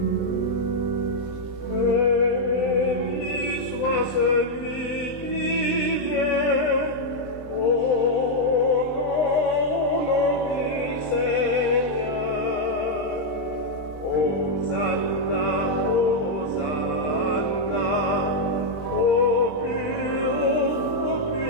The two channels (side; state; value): right; late; 20 ms